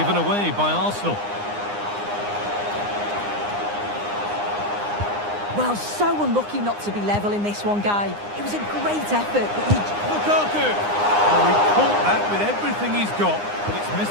away by Arsenal. Well, so unlucky not to be level in this one, Guy. It was a great effort, but he... Lukaku! Oh, he caught that with everything he's got, but it's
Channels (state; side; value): late; left; 9.8 ms